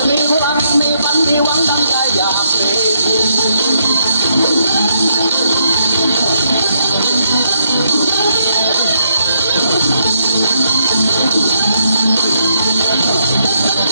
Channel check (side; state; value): both; inverted; correlation -0.75